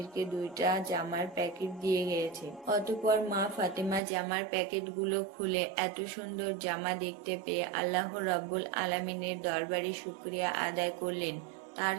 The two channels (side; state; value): left; drops out; at 4.0 s